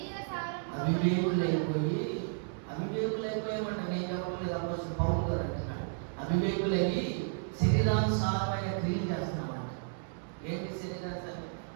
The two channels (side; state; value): left; silent; digital silence